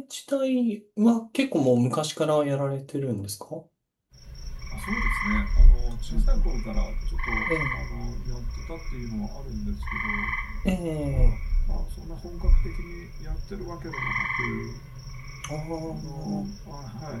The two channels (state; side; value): identical; both; correlation 1.00